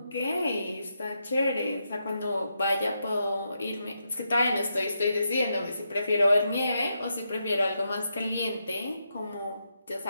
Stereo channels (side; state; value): both; inverted; correlation -0.83